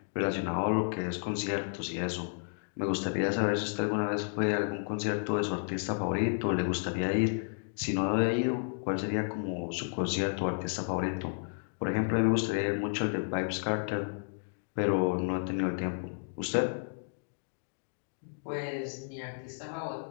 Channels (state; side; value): silent; right; digital silence